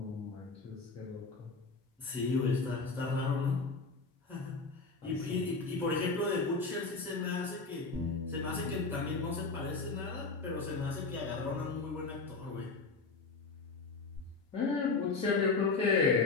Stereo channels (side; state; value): right; quieter; 4.1 dB